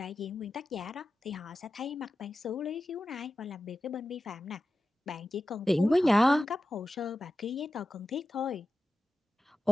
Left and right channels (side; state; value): both; normal; correlation 0.93